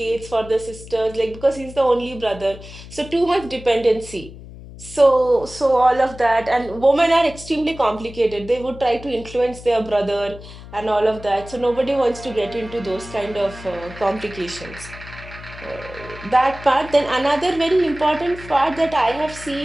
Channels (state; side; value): noise; left; hum, 16 dB below the sound